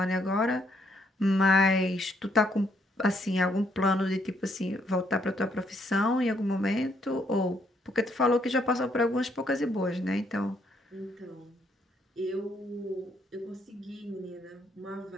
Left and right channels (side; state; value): both; normal; correlation 0.71